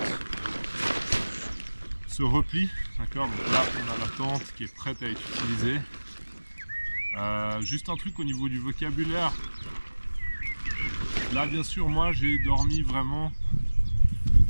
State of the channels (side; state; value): both; inverted; correlation -1.00